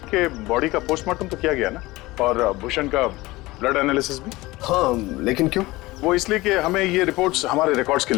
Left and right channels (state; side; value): quieter; right; 20.0 dB